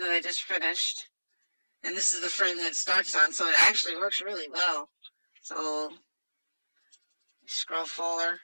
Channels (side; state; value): both; inverted; correlation -1.00